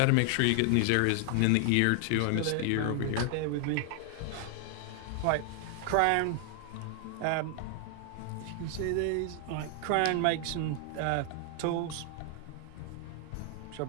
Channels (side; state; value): both; different; correlation 0.00